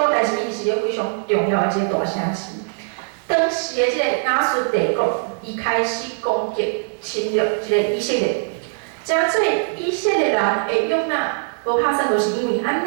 但是伊是一个非常重要的一个大城市。当时的即个亚述帝国，伊开始攻击、侵略即个以色列，真做以色列人的约拿，无拍算就是因为安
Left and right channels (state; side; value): silent; left; 65 dB below the other